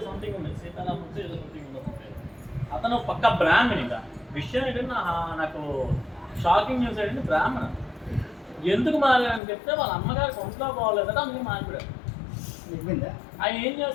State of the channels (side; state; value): right; drops out; at 9.4 s